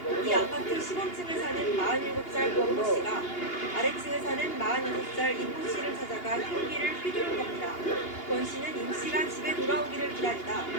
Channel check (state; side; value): late; right; 2.8 ms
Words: 이 아파트 15층에 사는 47살 권모 씨가 아래층에 사는 46살 임모 씨를 찾아가 흉기를 휘두른 겁니다. 권 씨는 임 씨가 집에 돌아오기를 기다리다